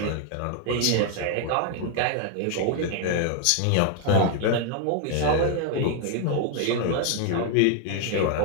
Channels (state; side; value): different; both; correlation 0.00